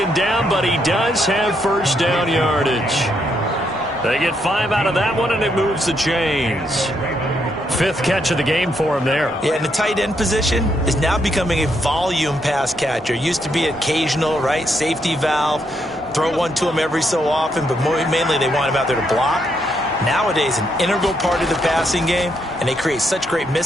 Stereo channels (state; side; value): normal; both; correlation 0.77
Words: down, but he does have first down yardage. They get 5 out of that one, and it moves the chains. 5th catch of the game for him there. Yeah, and the tight end position is now becoming a volume pass catcher. Used to be occasional, right? Safety valve. Throw one to him every so often, but mainly they want him out there to block. Nowadays, an integral part of the passing game, and they create such great